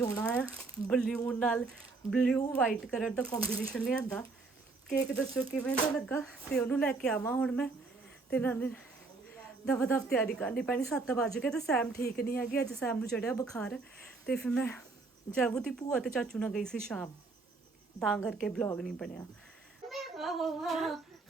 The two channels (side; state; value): left; quieter; 3.8 dB